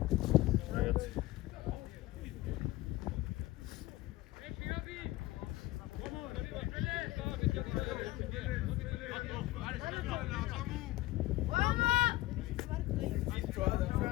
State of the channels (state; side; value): quieter; right; 17.7 dB